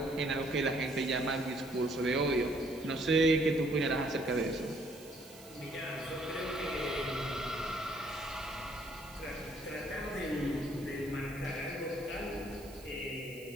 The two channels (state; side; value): noise; right; hiss, 20 dB below the sound